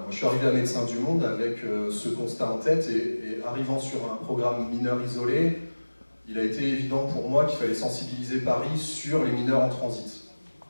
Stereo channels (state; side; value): inverted; both; correlation -1.00